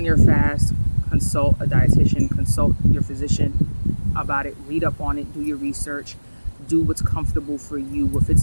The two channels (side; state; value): both; inverted; correlation -1.00